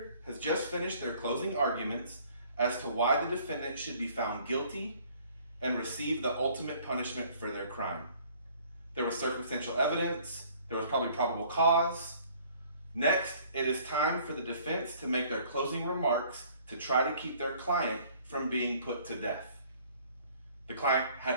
has just finished their closing arguments as to why the defendant should be found guilty and receive the ultimate punishment for their crime. There was circumstantial evidence, there was probably probable cause. Next, it is time for the defense to make their closing remarks to try to keep their client from being put to death. The client had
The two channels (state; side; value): inverted; both; correlation -0.56